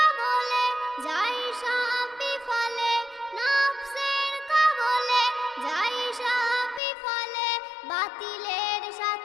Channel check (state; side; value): drops out; right; at 6.8 s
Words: যাই সব বিফলে, নফসের কবলে যাই সব বিফলে, বাতিলের